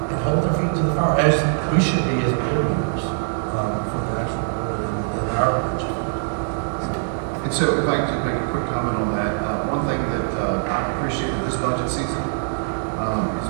hold their feet to the fire, as we should be as board members for the actual board in our budget. And so if I could make a quick comment on that, one thing that I appreciated this budget season is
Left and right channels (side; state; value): left; silent; digital silence